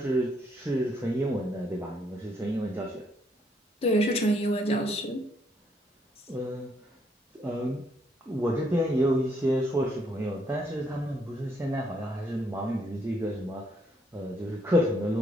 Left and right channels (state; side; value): normal; both; correlation 0.71